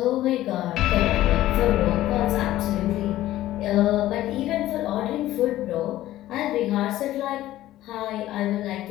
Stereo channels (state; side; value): quieter; right; 14.6 dB